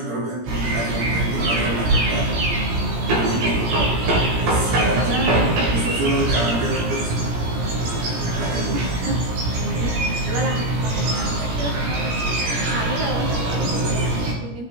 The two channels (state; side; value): late; left; 17 ms